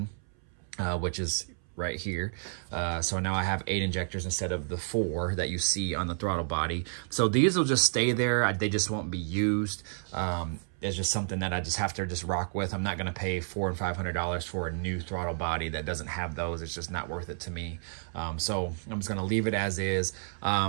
which is right here. So now I have 8 injectors instead of the 4 that you see on the throttle body. So these will just stay there. They just won't be used. It's just something that I just have to just rock with. I'm not going to pay $400 and $500 for a new throttle body that doesn't have those. It's just not worth it to me. So I'm just going to leave it as is.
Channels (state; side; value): silent; left; 57 dB below the other